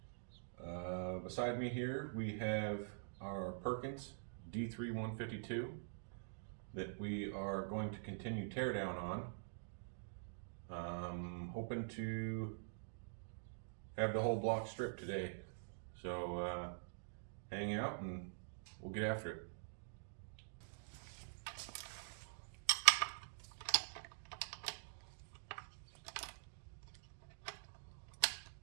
Beside me here, we have our Perkins D3 152 that we are going to continue teardown on. Hoping to have the whole block stripped today. So hang out and we'll get after it.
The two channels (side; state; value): left; silent; digital silence